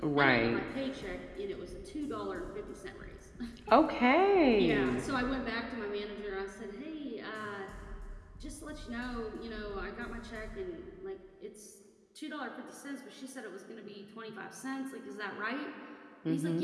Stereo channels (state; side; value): identical; both; correlation 1.00